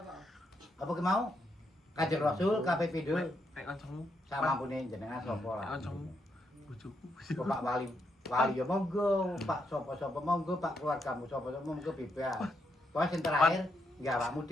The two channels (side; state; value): both; normal; correlation 0.79